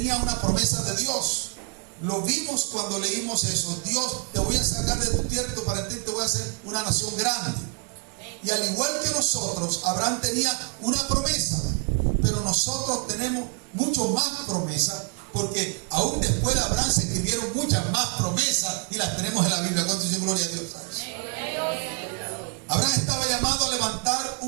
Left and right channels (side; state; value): left; quieter; 37.8 dB